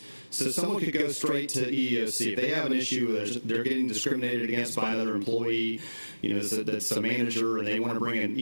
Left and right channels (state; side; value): inverted; both; correlation -1.00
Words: So someone could go straight to EEOC if they have an issue they're getting discriminated against by another employee, that's a manager, and they want to bring an